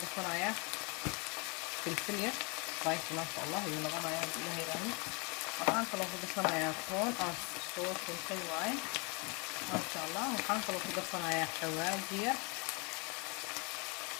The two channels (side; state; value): right; quieter; 31.7 dB